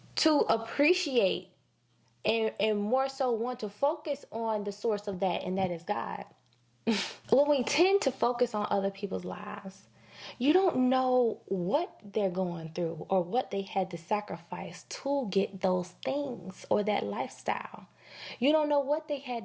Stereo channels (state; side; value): identical; both; correlation 1.00